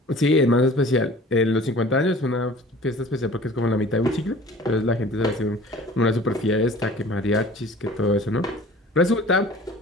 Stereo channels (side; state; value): both; normal; correlation 0.45